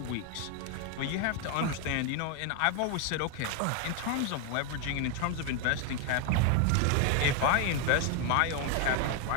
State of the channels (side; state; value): both; different; correlation 0.01